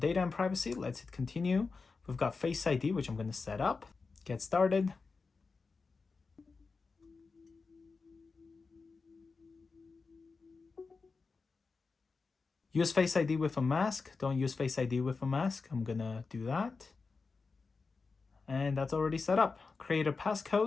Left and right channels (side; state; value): right; quieter; 4.4 dB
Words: and privacy, let's hit continue. We've got Face ID, which I'm going to set up. Get started. Use Face ID with a mask. Don't use Face ID with a mask. I'm gonna do that. And that's already set up. Create a